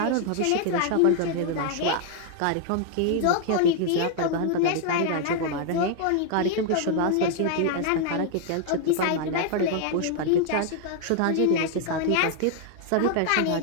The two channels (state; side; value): different; both; correlation 0.00